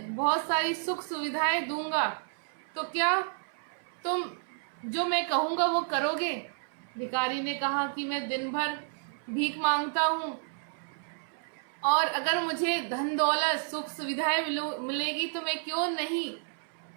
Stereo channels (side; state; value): left; silent; 57 dB below the other